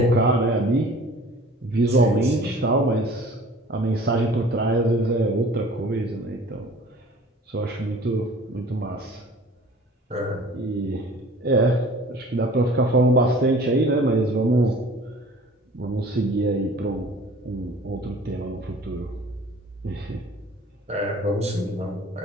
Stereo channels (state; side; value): normal; both; correlation 0.47